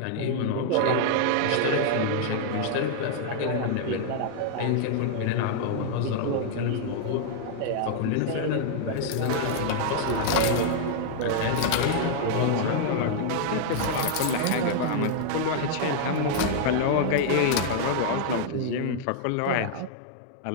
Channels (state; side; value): different; both; correlation -0.01